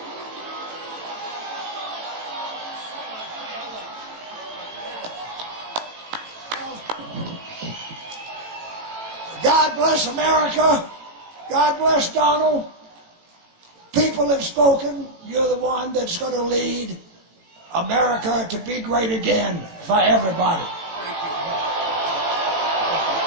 God bless America. God bless Donald. People have spoken. You're the one that's going to lead America to be great again for everybody.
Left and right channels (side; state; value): left; late; 18 ms